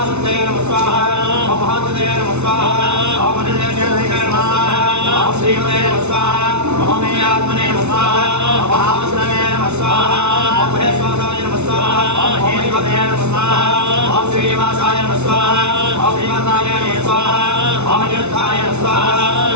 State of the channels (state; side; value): late; left; 0.81 ms